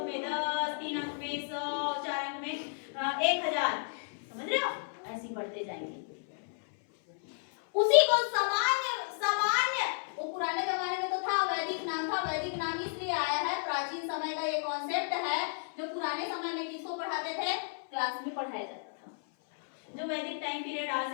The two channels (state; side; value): silent; right; 56 dB below the other